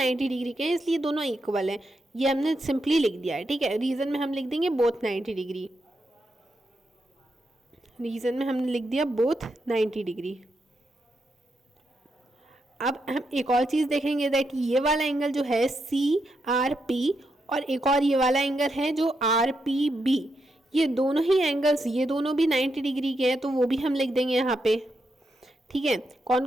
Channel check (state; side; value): normal; both; correlation 0.83